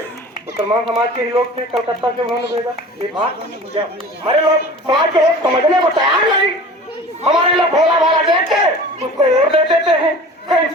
मुसलमान समाज के ही लोग थे, कलकत्ता से उन्होंने भेजा। ये बात हमारे लोग समाज के लोग समझने को तैयार नहीं। हमारे लोग भोला भाला देख के उसको वोट दे देते हैं। कहीं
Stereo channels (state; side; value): normal; both; correlation 0.40